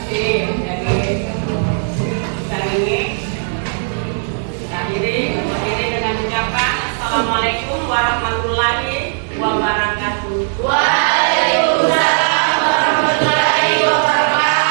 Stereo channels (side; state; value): left; silent; digital silence